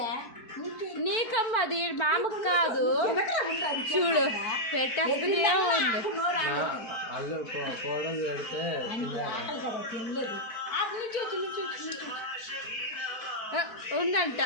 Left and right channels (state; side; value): late; right; 4.5 ms